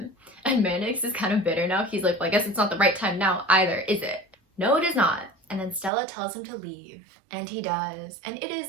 And Mannix is kind of bitter now. He's like, well, I guess it's not the right time now either, is it? No, it is not. And then Stella tells him to leave, and he does. And it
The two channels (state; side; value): drops out; left; at 5.9 s